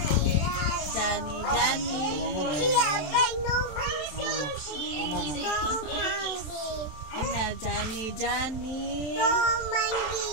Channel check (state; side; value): late; right; 27 ms